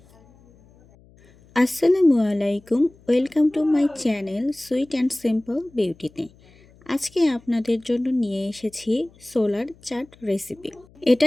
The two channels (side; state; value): left; noise; hum, 28 dB below the sound